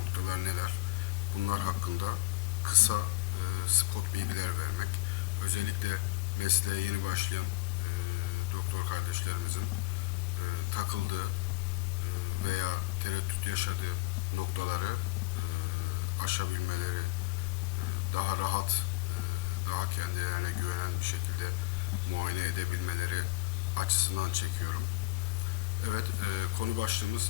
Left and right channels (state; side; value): quieter; right; 22.2 dB